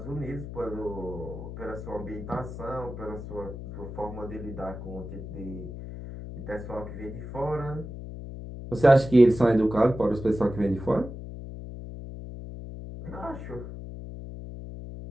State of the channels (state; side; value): noise; left; hum, 10 dB below the sound